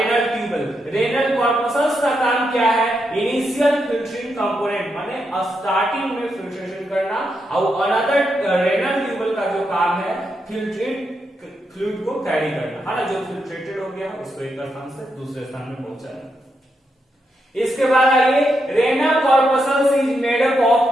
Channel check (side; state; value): both; normal; correlation 0.83